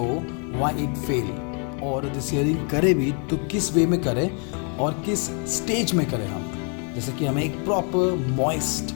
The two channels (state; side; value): quieter; right; 39.6 dB